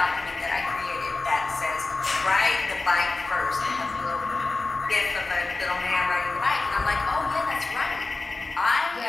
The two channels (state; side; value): quieter; right; 3.5 dB